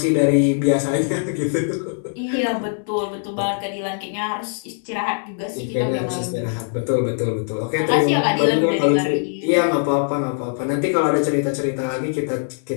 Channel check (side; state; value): right; silent; digital silence